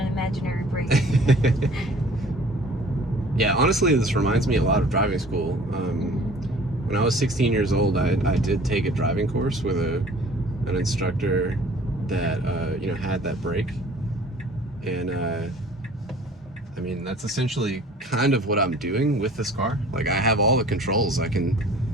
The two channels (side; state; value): both; normal; correlation 0.50